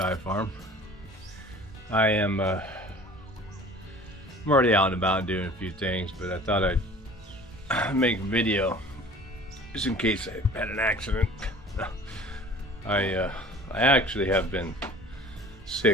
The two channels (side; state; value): both; normal; correlation 0.46